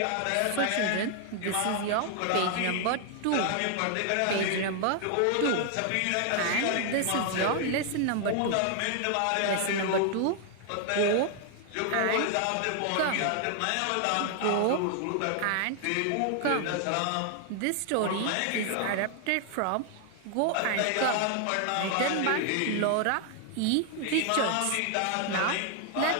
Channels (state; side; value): different; both; correlation 0.00